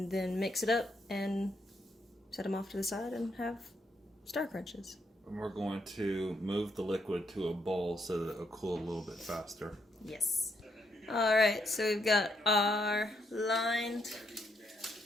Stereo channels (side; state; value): both; normal; correlation 0.77